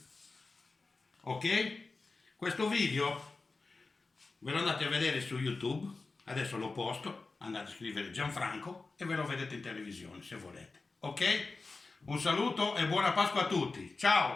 Ok? Questo video ve lo andate a vedere su YouTube. Adesso lo posto. Andate a scrivere Gianfranco e ve lo vedete in televisione se volete. Ok? Un saluto e buona Pasqua a tutti.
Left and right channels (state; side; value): quieter; right; 3.8 dB